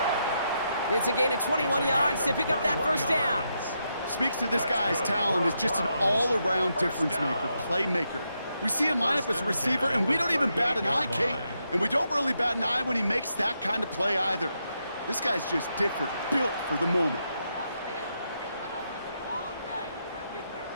It's a gain of 21 yards to pick up that first down. Speaks to this guy's talent as just an all-around difference maker, playmaker. We see him line up as a receiver, and we don't even bat an eye, Kate. And we don't really bat an eye when he makes that kind of play either. This guy's just different, built for the moment.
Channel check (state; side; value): inverted; both; correlation -0.82